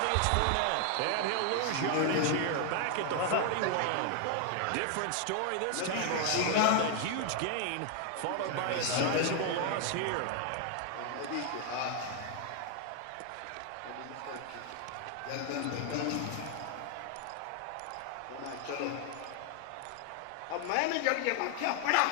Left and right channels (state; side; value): different; both; correlation 0.00